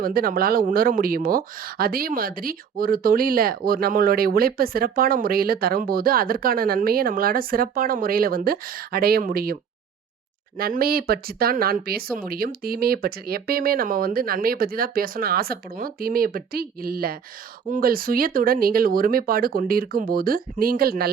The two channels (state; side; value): quieter; left; 7.0 dB